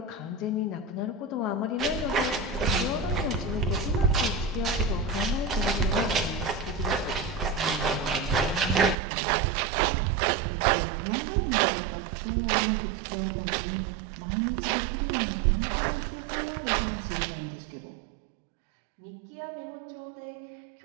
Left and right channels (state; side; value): drops out; left; at 9.0 s